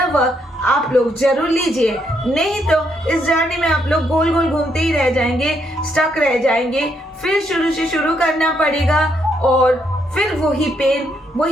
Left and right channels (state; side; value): normal; both; correlation 0.75